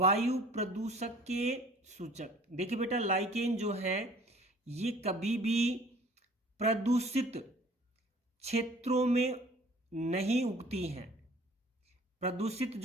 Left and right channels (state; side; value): normal; both; correlation 0.51